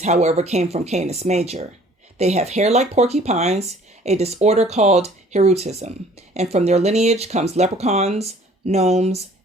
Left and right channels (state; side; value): normal; both; correlation 0.54